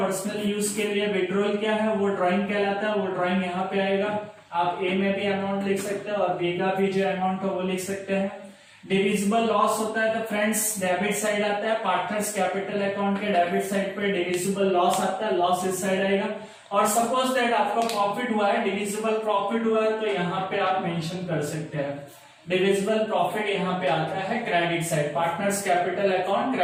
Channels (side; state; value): both; identical; correlation 1.00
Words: यूज के लिए विड्रॉल किया है, वो ड्राइंग कहलाता है। वो ड्राइंग यहाँ पे आएगा। आप ए में भी अमाउंट लिख सकते हैं और बी का भी जो अमाउंट हो वो लिख सकते हैं। डिविजिबल लॉस होता है तो फ्रेंड्स डेबिट साइड आता है, पार्टनर्स कैपिटल अकाउंट के डेबिट साइड पे डिविजिबल लॉस आता है, लॉस इस साइड आएगा। और सपोज दैट आपका प्रॉफिट हुआ है, डिविजिबल प्रॉफिट हुआ है, तो यहाँ पे आप मेंशन कर सकते हैं। डिविजिबल प्रॉफिट यहाँ पे आता है credit side, partners capital account